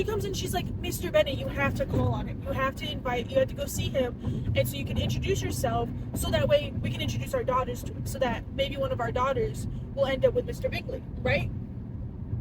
comes in, she's like, Mr. Bennet, you have to call on him. You have to go see him. And so you can introduce yourself, so that way we can introduce our daughters to him, so that maybe one of our daughters will end up with Mr. Bingley, right?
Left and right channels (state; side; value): identical; both; correlation 1.00